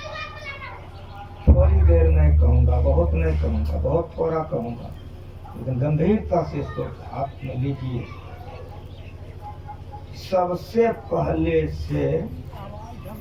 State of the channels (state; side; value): identical; both; correlation 1.00